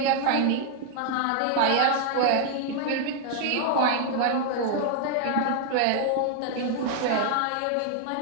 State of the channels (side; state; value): both; different; correlation 0.00